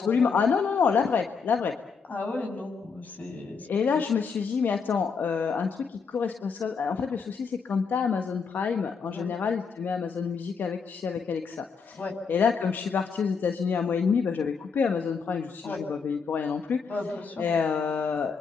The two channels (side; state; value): right; quieter; 5.5 dB